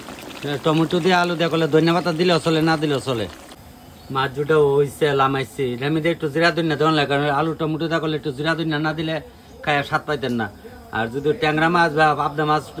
টমেটো দিয়ে আলু দিয়ে করলে ধনিয়া পাতা দিলেও চলে, না দিলেও চলে। মাছ ঝুলটা হয়েছে লামাইছি, আমি দিয়ে একটু জিরা ধনিয়া দেওয়া লাগে, কারণ আলু টমেটো দিয়ে করলে একটু জিরা ধনিয়া না দিলে খায় স্বাদ পাইতেন না। আর যদি ট্যাংরা মাছ বা পাবদা মাছ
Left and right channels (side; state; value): both; identical; correlation 1.00